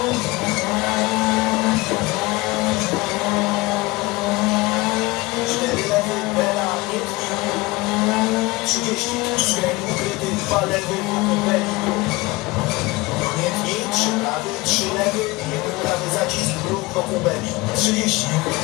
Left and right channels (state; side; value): quieter; right; 22.0 dB